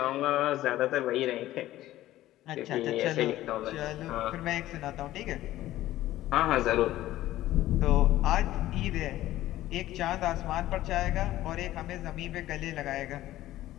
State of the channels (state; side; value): quieter; right; 14.9 dB